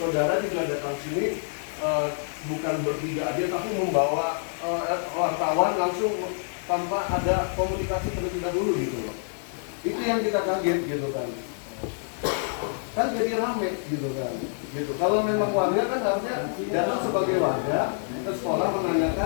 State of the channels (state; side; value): silent; right; digital silence